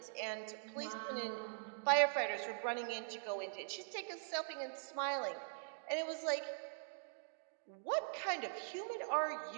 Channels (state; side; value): silent; left; digital silence